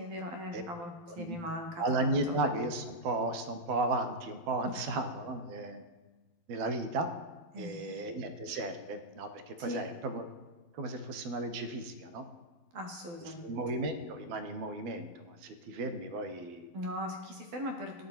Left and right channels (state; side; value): late; left; 12 ms